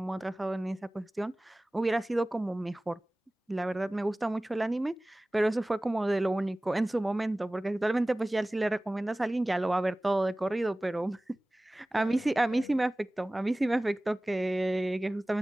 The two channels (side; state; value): both; normal; correlation 0.98